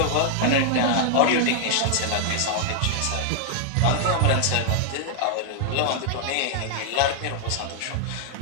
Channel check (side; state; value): both; different; correlation 0.00